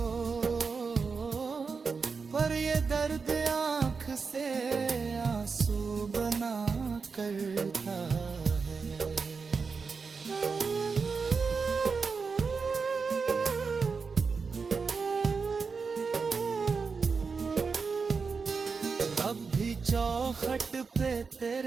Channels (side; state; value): left; quieter; 5.0 dB